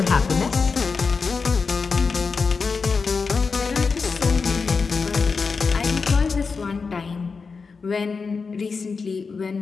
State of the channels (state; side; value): quieter; right; 4.8 dB